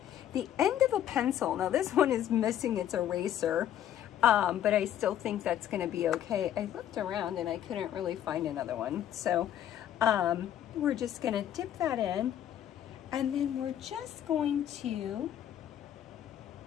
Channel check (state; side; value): quieter; right; 10.9 dB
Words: the end of a pencil, now this one is missing its eraser, but I still think that's going to be okay. I looked around and I couldn't really find another one. So we're just going to dip that in, and then we're just going to